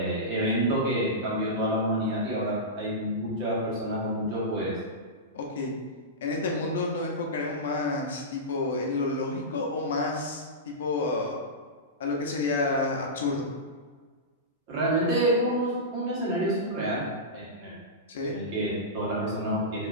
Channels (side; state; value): both; normal; correlation -0.16